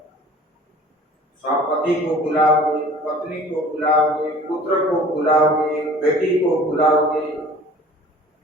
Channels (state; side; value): normal; both; correlation 0.47